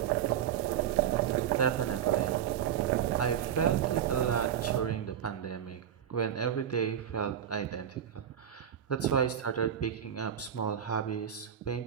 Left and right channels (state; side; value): quieter; left; 9.4 dB